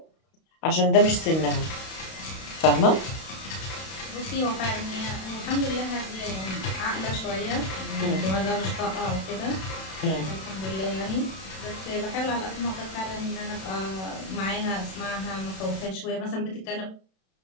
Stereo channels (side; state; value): right; late; 32 ms